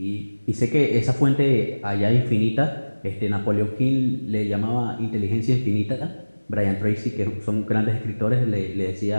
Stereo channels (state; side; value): inverted; both; correlation -1.00